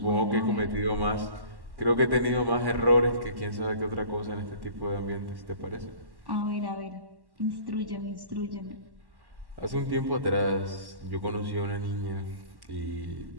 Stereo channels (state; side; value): late; left; 1.1 ms